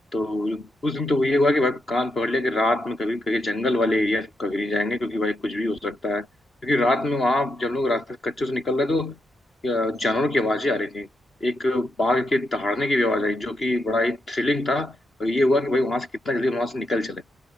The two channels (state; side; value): normal; both; correlation 0.83